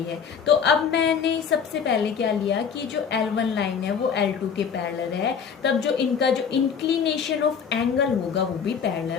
है। तो अब मैंने सबसे पहले क्या लिया कि जो L1 लाइन है वो L2 के पैरेलल है, तब जो इनका जो इंक्लिनेशन ऑफ एंगल होगा वो भी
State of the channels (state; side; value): quieter; right; 6.8 dB